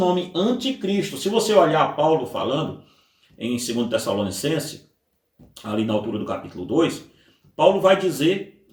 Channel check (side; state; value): both; identical; correlation 1.00